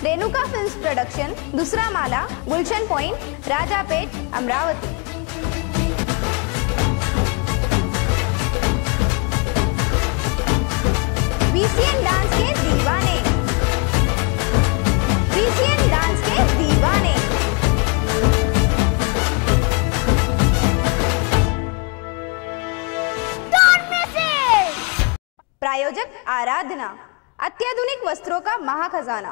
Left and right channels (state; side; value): quieter; right; 31.6 dB